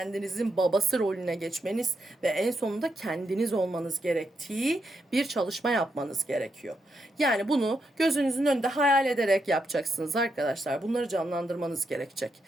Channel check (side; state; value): both; normal; correlation 0.82